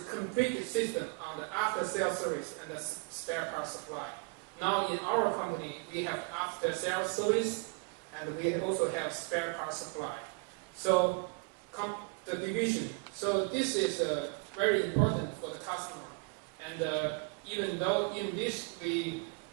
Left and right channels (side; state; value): left; quieter; 33.0 dB